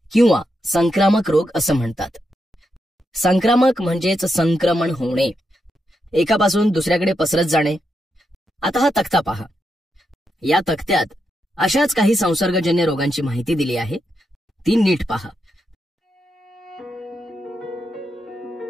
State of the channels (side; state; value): both; normal; correlation 0.84